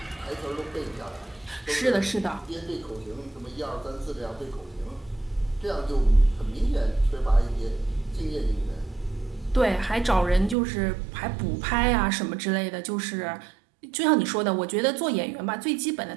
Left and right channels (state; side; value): drops out; left; at 10.6 s